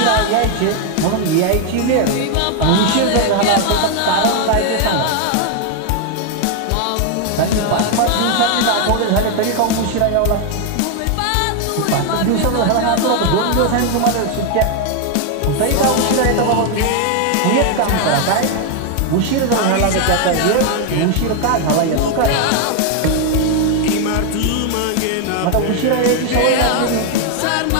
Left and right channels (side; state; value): both; different; correlation 0.01